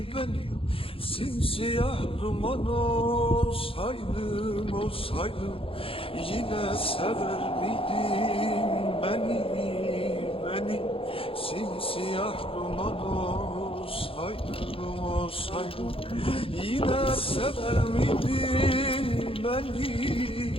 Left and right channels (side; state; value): right; late; 0.27 ms